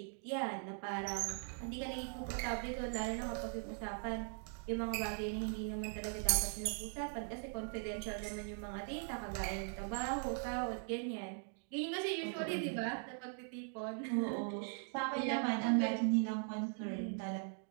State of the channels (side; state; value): left; silent; 51 dB below the other